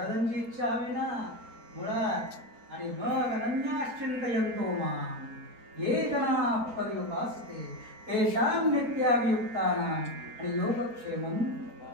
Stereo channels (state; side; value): late; left; 4.3 ms